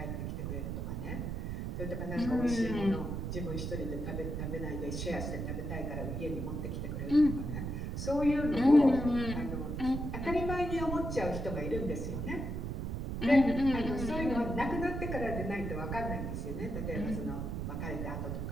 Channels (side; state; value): right; noise; rumble, 3 dB below the sound